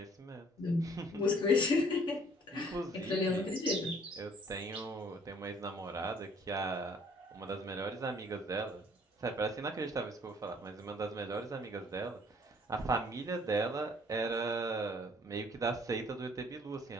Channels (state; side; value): normal; both; correlation 0.58